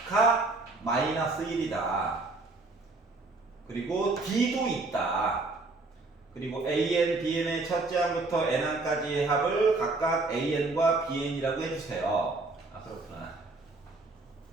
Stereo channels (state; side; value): quieter; left; 3.4 dB